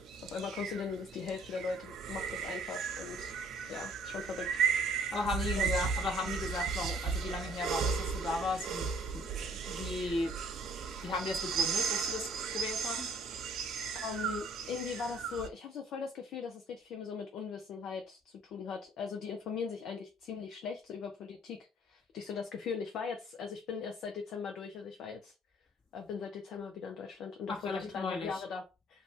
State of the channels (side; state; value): both; normal; correlation 0.58